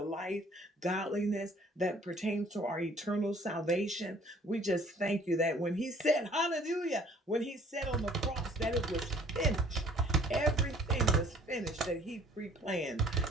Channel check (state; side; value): normal; both; correlation 0.56